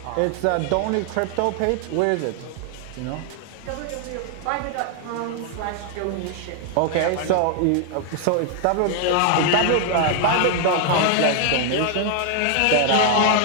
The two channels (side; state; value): both; different; correlation 0.00